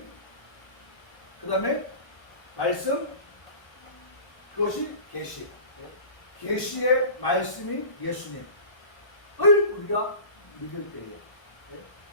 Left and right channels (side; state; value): right; late; 1.1 ms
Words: 그 다음에 말씀, 그것이 계시. 계시의 말씀인 예수님을 우리가 믿을 때에,